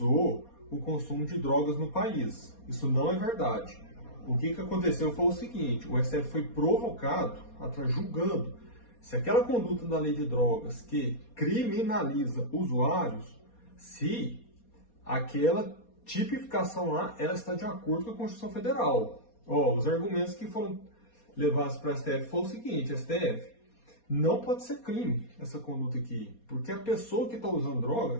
o consumo de drogas no país. Isso não é verdade. O que aconteceu foi o seguinte: o STF foi provocado, julgando se aquela conduta da lei de drogas que criminaliza usuários, se aquela tipificação lá ela está de acordo com a Constituição Federal. Os argumentos que foram levados para a STF foi o seguinte: STF, não pode ser crime essa conduta aqui, porque a pessoa que está usando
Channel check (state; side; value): late; right; 4.2 ms